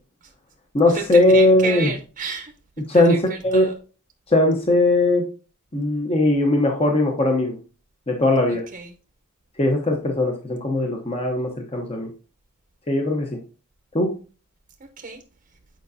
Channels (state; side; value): normal; both; correlation 0.50